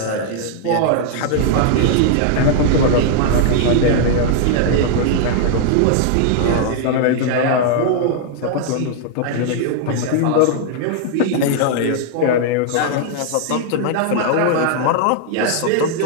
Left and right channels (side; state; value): both; different; correlation -0.01